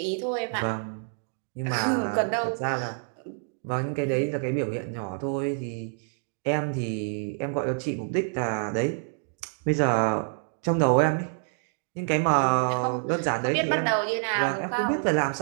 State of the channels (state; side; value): silent; left; 60 dB below the other